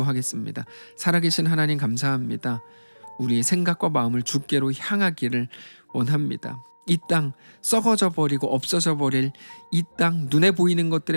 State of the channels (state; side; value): inverted; both; correlation -1.00